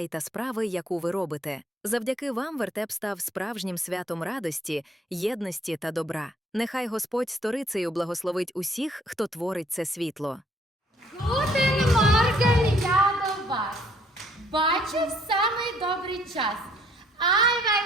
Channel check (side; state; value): both; normal; correlation 0.64